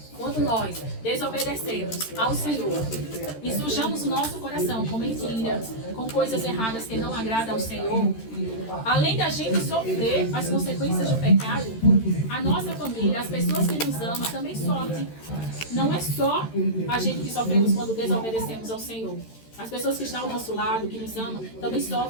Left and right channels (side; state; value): right; late; 13 ms